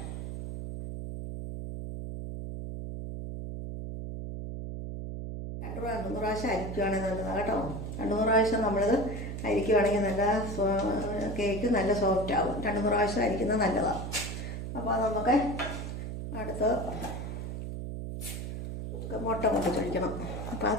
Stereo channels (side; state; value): right; noise; hum, 6 dB below the sound